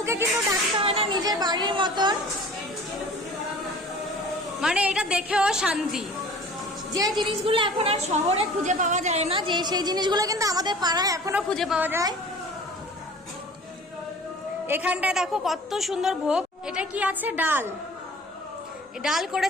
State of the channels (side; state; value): both; normal; correlation 0.44